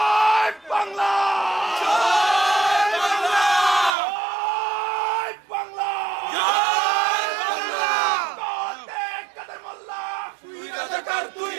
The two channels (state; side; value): drops out; left; at 4.0 s